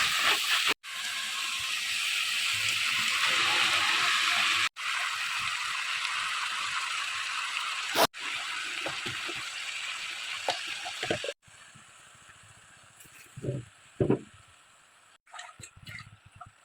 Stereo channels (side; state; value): both; identical; correlation 1.00